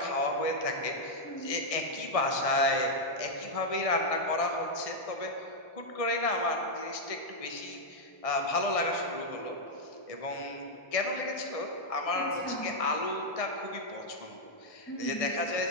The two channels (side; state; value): right; late; 1.6 ms